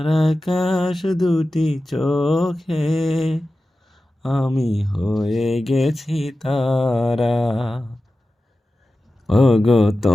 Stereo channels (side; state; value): both; normal; correlation 0.94